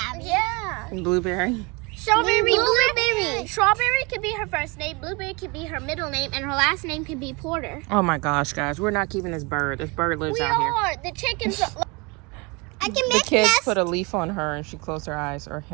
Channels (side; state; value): left; quieter; 27.8 dB